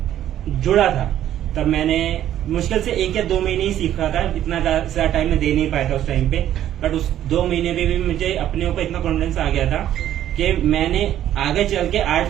जुड़ा था, तब मैंने मुश्किल से 1 या 2 महीने ही सीखा था, इतना ज्यादा टाइम मैं दे नहीं पाया था उस टाइम पे। बट उस 2 महीने में भी मुझे अपने ऊपर इतना कॉन्फिडेंस आ गया था कि मैंने आगे चल के आर्ट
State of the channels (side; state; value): left; quieter; 11.7 dB